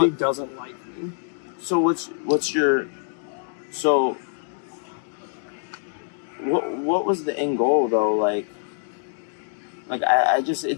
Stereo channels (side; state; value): right; silent; digital silence